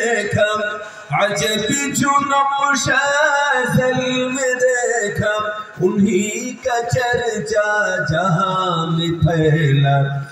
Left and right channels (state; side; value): identical; both; correlation 1.00